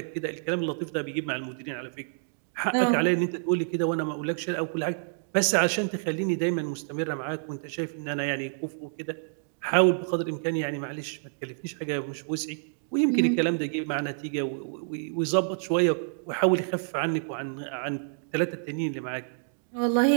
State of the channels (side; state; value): left; silent; digital silence